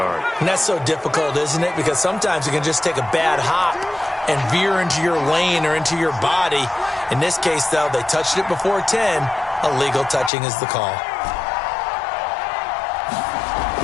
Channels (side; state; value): right; drops out; at 10.3 s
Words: And that's so difficult, isn't it? Because sometimes you can just take a bad hop and veer into your lane or into your body. In this case, though, they touched it before 10. Illegal touching is the call.